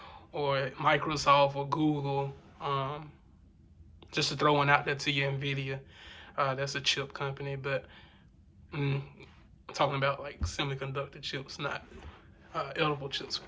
or Microsoft or Google. Just to throw one out there to you, Nvidia. That's a chip company, but I'm talking about like semiconductor chips, not edible chips.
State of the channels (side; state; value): both; identical; correlation 1.00